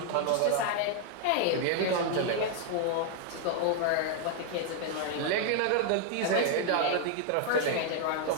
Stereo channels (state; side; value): different; both; correlation 0.00